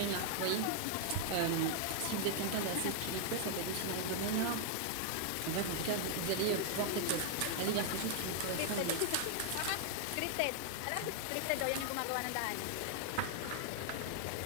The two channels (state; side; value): different; both; correlation 0.00